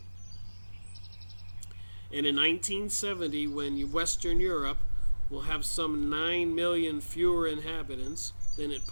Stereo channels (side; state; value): both; inverted; correlation -1.00